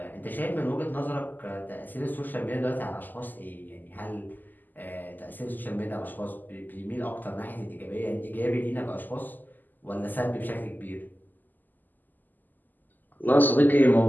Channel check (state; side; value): late; right; 0.086 ms